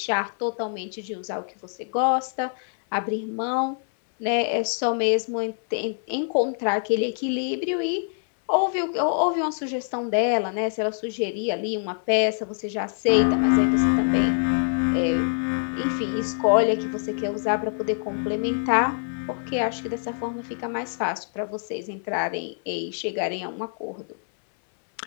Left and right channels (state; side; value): silent; right; 62 dB below the other